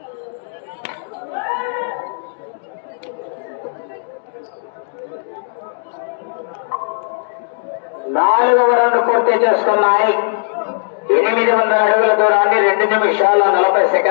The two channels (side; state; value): right; silent; digital silence